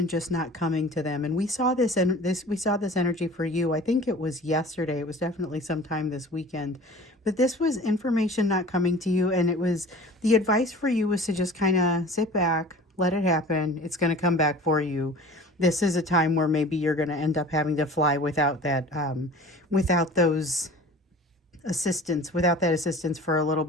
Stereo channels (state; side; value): normal; both; correlation 0.42